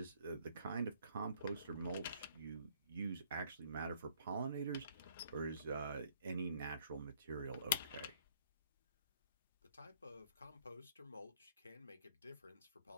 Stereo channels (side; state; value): both; inverted; correlation -0.61